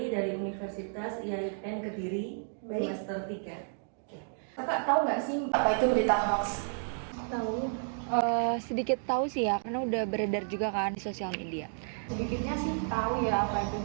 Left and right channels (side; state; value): left; silent; digital silence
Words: dari Universitas IAIN Kediri, Baik. semester 3. Kakak tahu nggak sih Apa itu berita hoax? tahu? Sedikit tahu sih ya, karena udah beredar juga kan di sosial media. Sedikitnya sih tahu ya apa itu